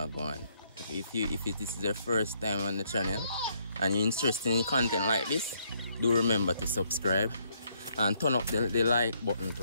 I'm going. If this is your first time on the channel and you're interested in content like this, do remember to subscribe and turn up the like button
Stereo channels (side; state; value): both; inverted; correlation -0.72